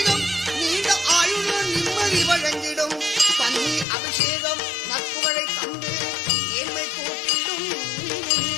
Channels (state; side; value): drops out; right; at 3.9 s